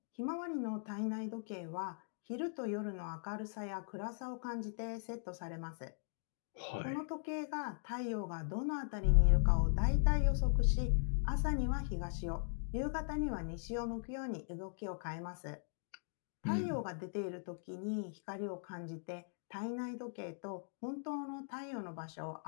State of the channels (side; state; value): right; silent; digital silence